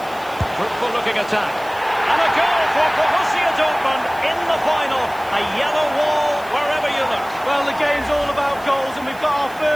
Fruitful looking attack. And a goal for Borussia Dortmund in the final. A yellow wall wherever you look. Well, the game's all about goals, and we've got our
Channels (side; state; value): right; noise; hiss, 22 dB below the sound